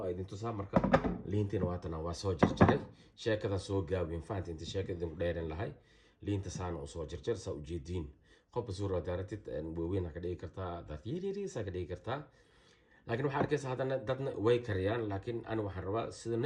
idin tusaa marka liinteena waatana waa soo jarjaray sheekada soo gaabin faanti inta sheekada ku dheeran lahay liinta saana soo jarjar sa u jeedin qof suura daaratid weeyna ka dhigi kartaa dad yiri sa ka dhigi kartaa laakiin waxa arkaysa hadana dadna way kariyaan laakiin ana waxaan rabaa sida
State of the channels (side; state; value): both; identical; correlation 1.00